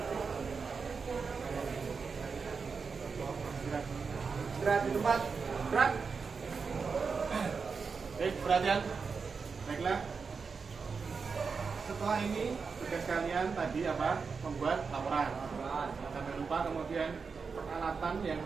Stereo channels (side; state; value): left; quieter; 5.2 dB